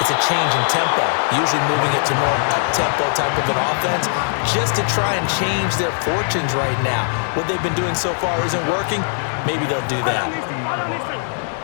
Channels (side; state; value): right; silent; 59 dB below the other